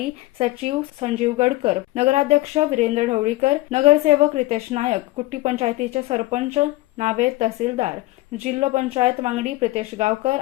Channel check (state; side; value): quieter; right; 19.1 dB